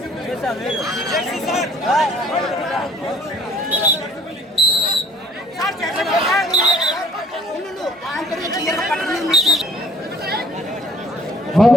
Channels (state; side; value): normal; both; correlation 0.55